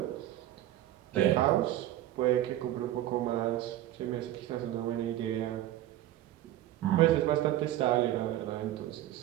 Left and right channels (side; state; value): left; quieter; 13.6 dB